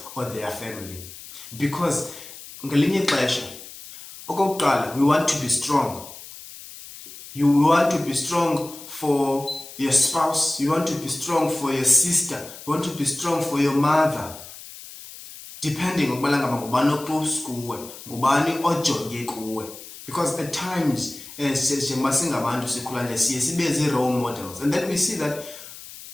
or their family, because ngelinye ixesha okokuqala we want to be strong. You want to be strong for your spouse, you want to be strong for your sister, you want to be strong for your mother, depending on ngubani oclose kuwe, ngubani ojonge kuwe. Because at times njengoba singabantu sikhula nje siye sibe role models, and then we see that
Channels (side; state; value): left; noise; hiss, 15 dB below the sound